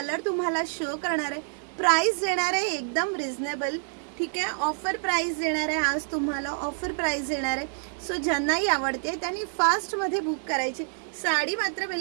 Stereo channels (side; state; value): left; silent; digital silence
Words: तुम्हाला शो करणार आहे. प्राइस देणार आहे एकदम रिझनेबल. ठीक आहे. ऑफर प्राइस देणार आहे. आज तुम्हाला ऑफर प्राइस देणार आहे. सो ज्यांनाही आवडते त्यांनी फास्ट मध्ये बुक करायची. साडी मात्र